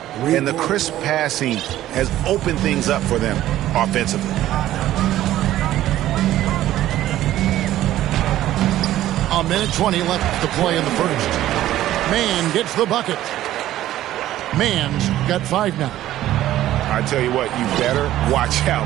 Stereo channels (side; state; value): left; quieter; 13.7 dB